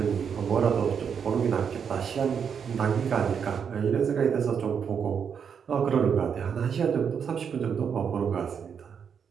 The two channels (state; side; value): quieter; left; 7.1 dB